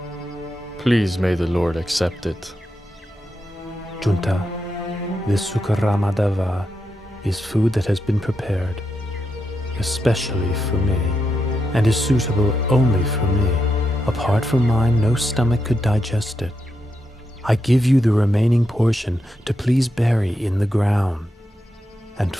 Please may the Lord accept it. Junta, this Sukaramatava is food that has been prepared, especially for me, and is suitable only for me. Apart from mine, no stomach could digest it. I give you the remaining portion to please bury in the ground. And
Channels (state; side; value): normal; both; correlation 0.84